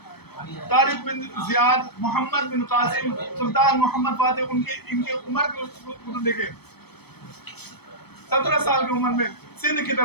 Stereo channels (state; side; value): late; right; 0.97 ms